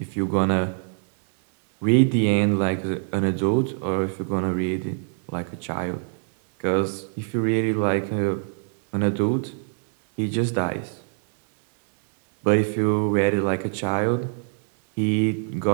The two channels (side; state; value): left; silent; digital silence